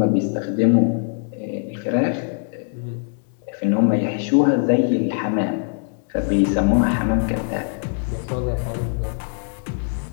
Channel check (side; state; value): right; silent; 64 dB below the other